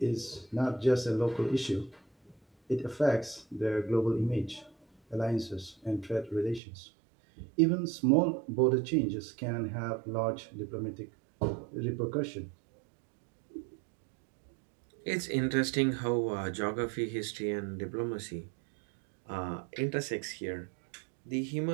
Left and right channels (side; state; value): left; drops out; at 6.6 s